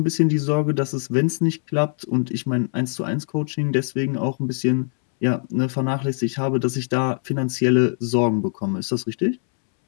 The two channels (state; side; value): silent; right; 64 dB below the other